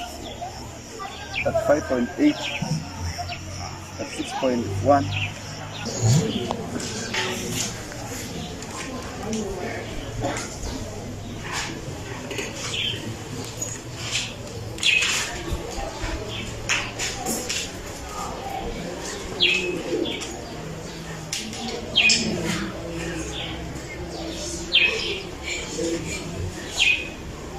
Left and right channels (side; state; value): both; identical; correlation 1.00